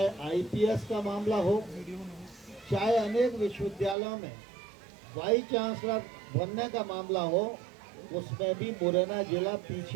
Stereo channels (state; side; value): drops out; left; at 4.0 s